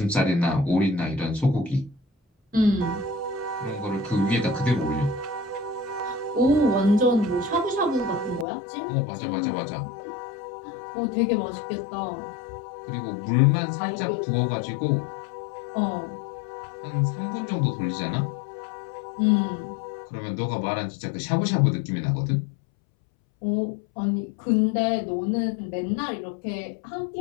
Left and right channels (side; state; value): right; drops out; at 8.5 s